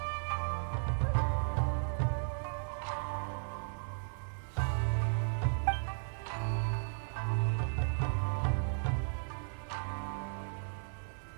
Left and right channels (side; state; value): left; silent; digital silence